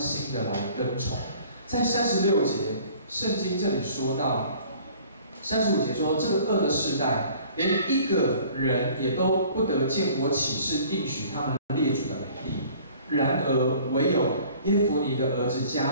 的来跟从。在36节，圣经这里说到，35节说，这个恶的世代，连一个人也都不得见我起誓应许他们列祖的美地。然而唯有耶孚尼的儿子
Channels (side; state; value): both; inverted; correlation -0.51